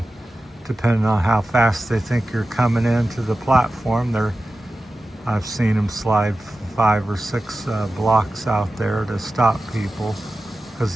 depending on how fast they think you're coming into the platform, I've seen them slide 5 or 6 blocks out there to stop people,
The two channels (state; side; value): normal; both; correlation 0.94